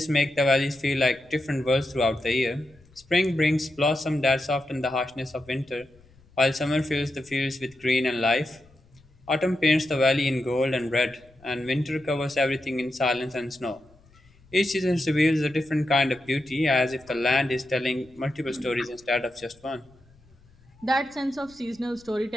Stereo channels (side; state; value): left; noise; rumble, 29 dB below the sound